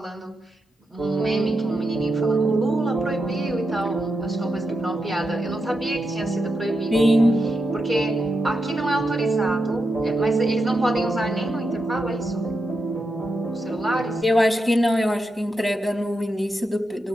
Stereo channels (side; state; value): both; normal; correlation 0.86